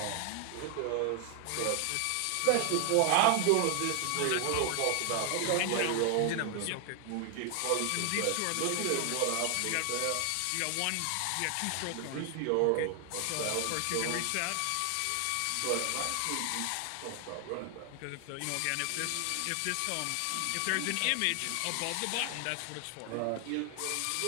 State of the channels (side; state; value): both; different; correlation 0.00